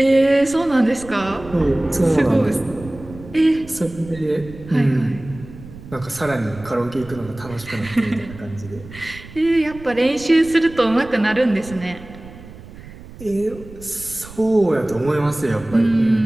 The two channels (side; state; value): right; noise; rumble, 17 dB below the sound